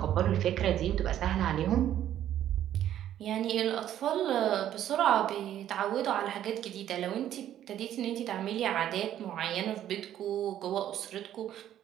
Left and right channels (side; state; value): left; quieter; 11.4 dB